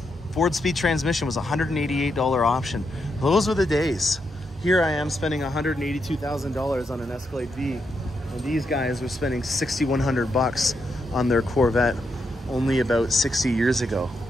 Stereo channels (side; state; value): both; normal; correlation 0.82